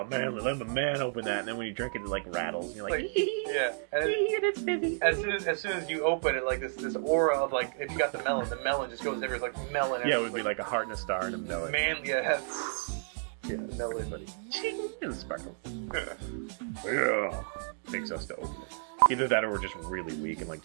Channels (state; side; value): silent; left; digital silence